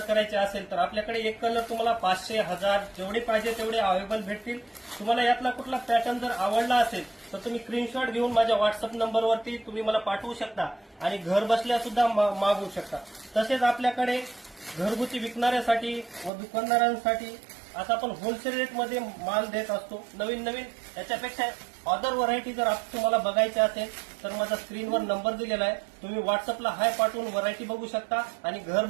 असेल तर आपल्याकडे एक कलर तुम्हाला 500, 1000 जेवढे पाहिजे तेवढे अवेलेबल भेटतील। तुम्हाला यातला कुठला पॅटर्न जर आवडला असेल तर तुम्ही स्क्रीनशॉट घेऊन माझ्या व्हॉट्सअप नंबरवरती तुम्ही मला पाठवू शकता आणि घर बसल्या सुद्धा मागवू शकता। तसेच आपल्याकडे घरगुती विकणाऱ्यासाठी व दुकानदारांसाठी आता आपण होलसेल रेटमध्ये माल देत असतो। नवीन नवीन याच्यापेक्षा अदर व्हरायटी जर तुम्हाला बघायची असेल तर माझा स्क्रीनवर नंबर दिलेला आहे, तुम्ही व्हॉट्सअपला हाय पाठवून व्हरायटी बघू शकता आणि घर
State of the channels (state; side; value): drops out; left; at 16.3 s